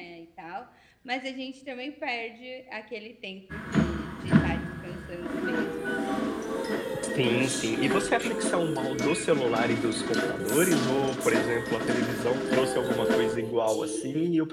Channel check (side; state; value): both; identical; correlation 1.00